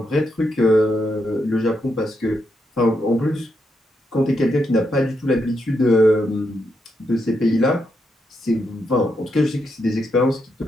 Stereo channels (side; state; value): both; normal; correlation 0.82